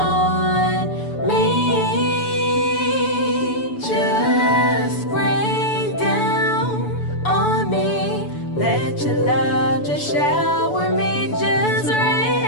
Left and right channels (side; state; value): right; late; 7.0 ms